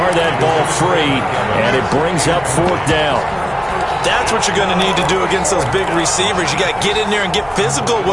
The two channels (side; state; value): both; identical; correlation 1.00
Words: that ball free, and it brings up 4th down. That's what you're going to need to do against those big receivers. You got to get in there and get physical